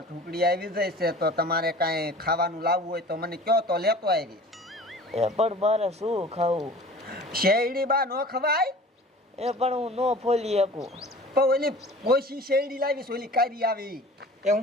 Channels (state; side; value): normal; both; correlation 0.43